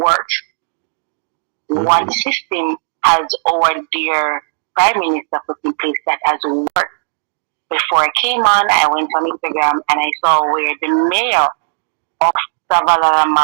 One system has our dear Prime Minister put in place that has worked. Before I came on, I went on Instagram and I saw where the mayor of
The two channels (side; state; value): left; silent; digital silence